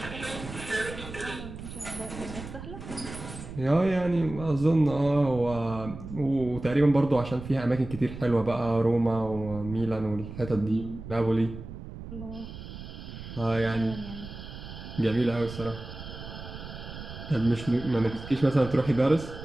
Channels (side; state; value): right; noise; rumble, 11 dB below the sound